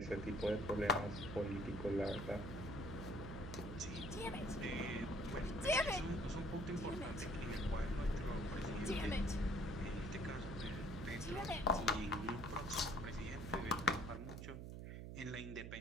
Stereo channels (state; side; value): noise; right; hum, 7 dB below the sound